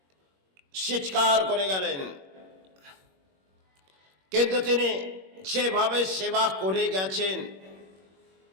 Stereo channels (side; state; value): left; late; 21 ms